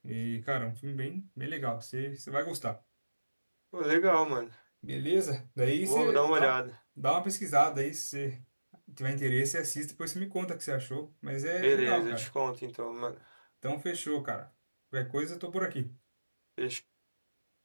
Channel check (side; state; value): both; inverted; correlation -1.00